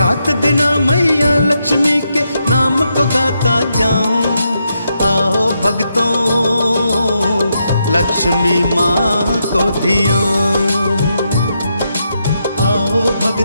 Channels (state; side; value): inverted; both; correlation -0.82